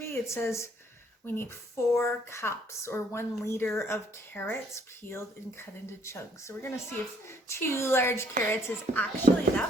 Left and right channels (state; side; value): normal; both; correlation 0.64